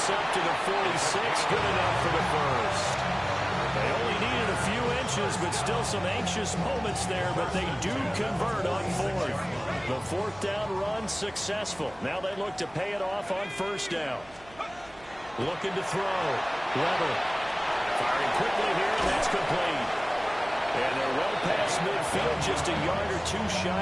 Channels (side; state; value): right; noise; hum, 24 dB below the sound